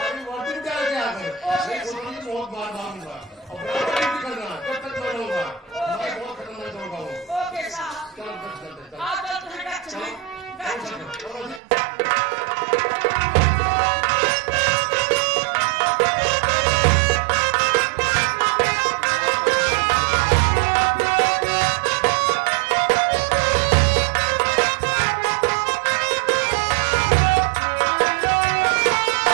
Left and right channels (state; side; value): drops out; left; at 11.6 s